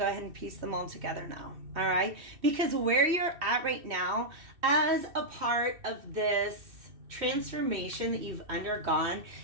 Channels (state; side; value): late; left; 2.7 ms